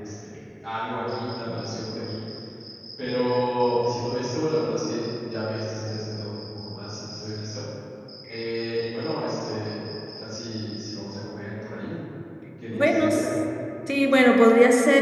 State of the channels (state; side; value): identical; both; correlation 1.00